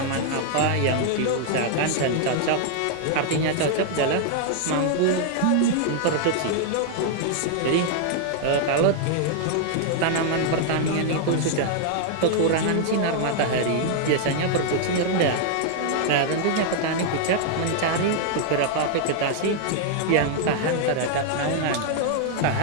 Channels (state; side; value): different; both; correlation 0.00